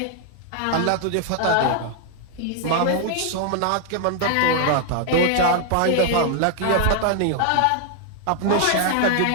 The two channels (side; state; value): both; different; correlation 0.00